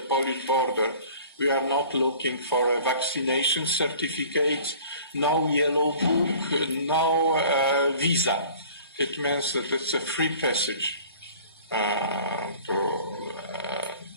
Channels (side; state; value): both; inverted; correlation -0.47